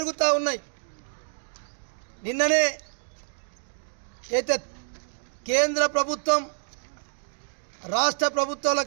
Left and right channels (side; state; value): left; silent; digital silence